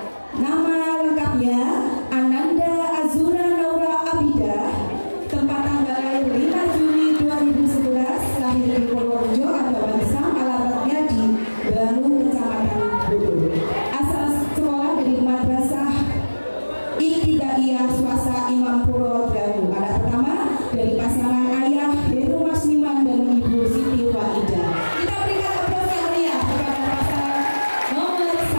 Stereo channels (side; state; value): both; inverted; correlation -1.00